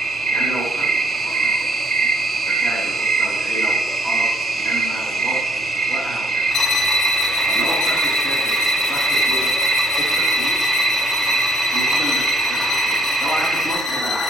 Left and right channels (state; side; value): normal; both; correlation 0.66